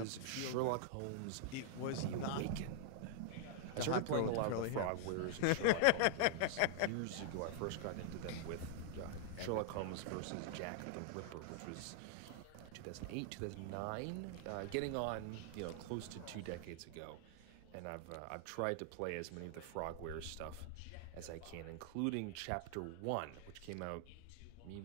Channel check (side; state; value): both; different; correlation -0.01